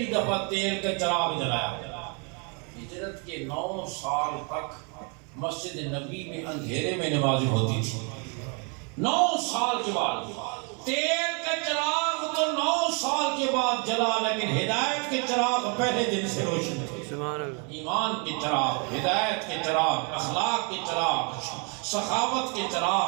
دفعہ تیل کا چراغ جلایا۔ ہجرت کے 9 سال تک مسجد نبی میں اندھیرے میں نماز ہوتی تھی۔ 9 سال کے بعد تیل کا چراغ تو 9 سال کے بعد جلا، لیکن ہدایت کے چراغ پہلے دن سے روشن تھے۔ ایمان کے چراغ، ہدایت کے چراغ، اخلاق کے چراغ، سخاوت کے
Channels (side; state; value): left; quieter; 35.9 dB